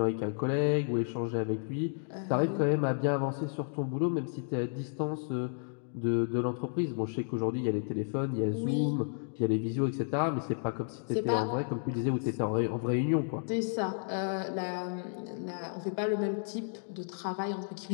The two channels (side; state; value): right; silent; digital silence